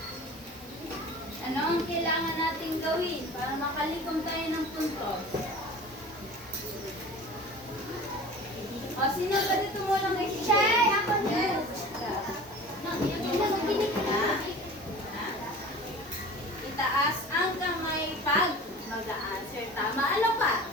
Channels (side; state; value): both; normal; correlation 0.40